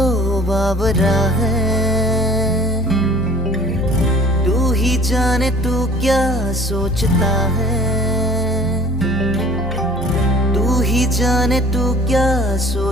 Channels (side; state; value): both; normal; correlation 0.49